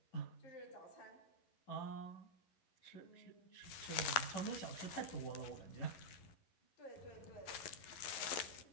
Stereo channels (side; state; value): right; late; 11 ms